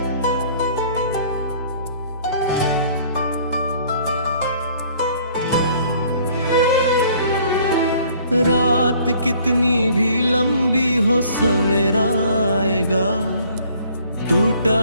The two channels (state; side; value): inverted; both; correlation -0.57